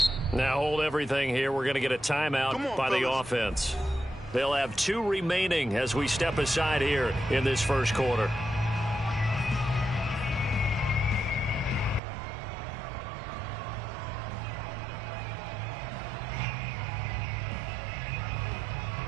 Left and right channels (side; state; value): left; drops out; at 12.0 s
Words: Now hold everything here. We're going to get a timeout by the offense. They'll have 2 remaining as we step aside here in this first quarter.